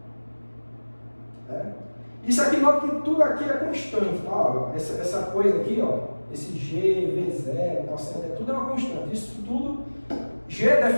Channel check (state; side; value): inverted; both; correlation -1.00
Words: Né? Isso aqui, nota que tudo aqui é constante. Tá? Essa coisa aqui, ó, esse g, v0, cosseno, tudo é uma constante. Isso tudo, g é